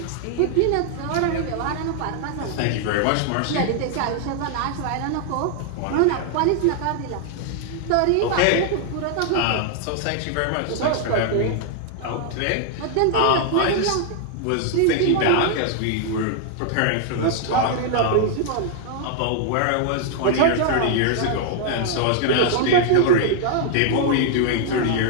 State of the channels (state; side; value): different; both; correlation 0.00